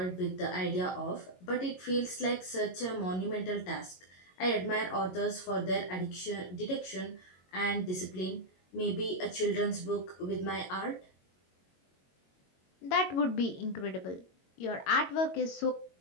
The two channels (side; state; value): right; late; 22 ms